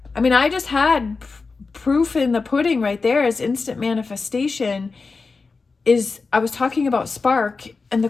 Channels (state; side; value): quieter; right; 4.3 dB